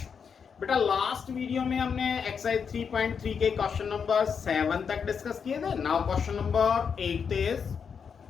बेटा लास्ट वीडियो में हमने एक्सरसाइज 3.3 के क्वेश्चन नंबर 7 तक डिस्कस किए थे। Now question number 8 is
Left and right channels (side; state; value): right; quieter; 6.5 dB